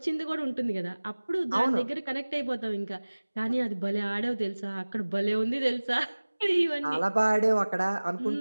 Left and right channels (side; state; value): both; inverted; correlation -1.00